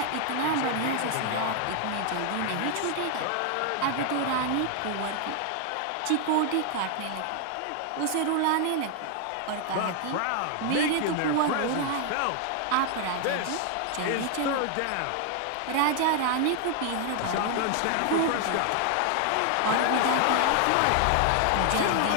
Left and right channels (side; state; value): both; different; correlation 0.00